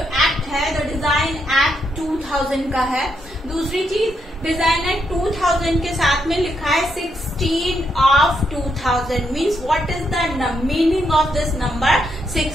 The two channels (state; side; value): normal; both; correlation 0.79